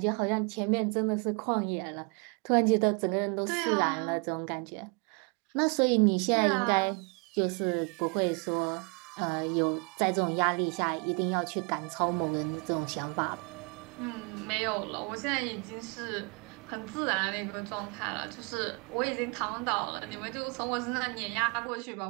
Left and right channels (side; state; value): left; quieter; 34.2 dB